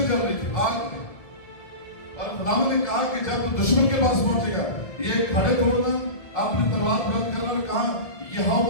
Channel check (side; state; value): right; late; 1.7 ms